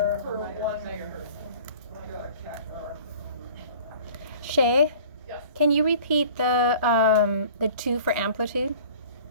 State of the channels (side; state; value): both; inverted; correlation -0.46